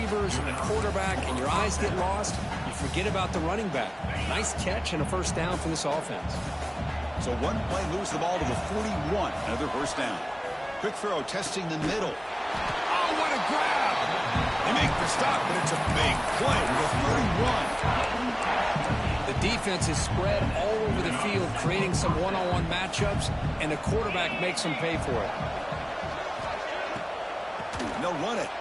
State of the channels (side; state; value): both; identical; correlation 1.00